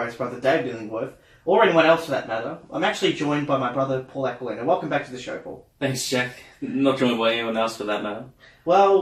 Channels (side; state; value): both; identical; correlation 1.00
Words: Brother David Illingworth, or anyone else for that matter. I'm actually joined by my brother, Paul Aquilina. Welcome back to the show, Paul. Thanks, Jack. Not joined by anyone else for that matter.